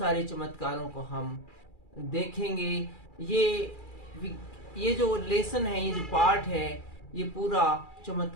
चमत्कारों को हम देखेंगे। ये जो लेसन है, ये जो पाठ है, ये पूरा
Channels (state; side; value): late; right; 2.4 ms